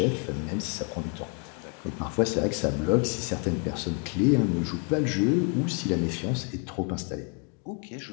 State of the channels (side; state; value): right; quieter; 34.8 dB